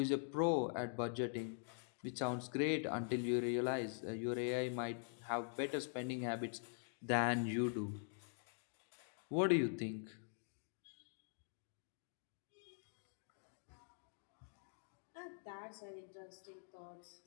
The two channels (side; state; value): right; silent; digital silence